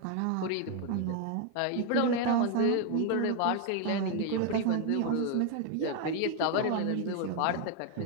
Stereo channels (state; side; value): different; both; correlation 0.01